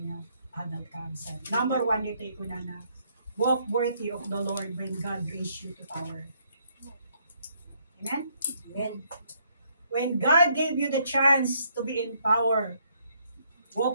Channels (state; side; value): inverted; both; correlation -0.70